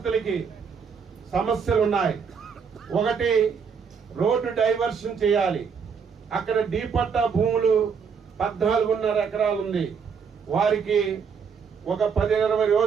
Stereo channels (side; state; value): left; quieter; 6.2 dB